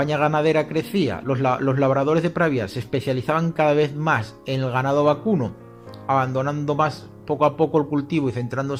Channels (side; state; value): both; identical; correlation 1.00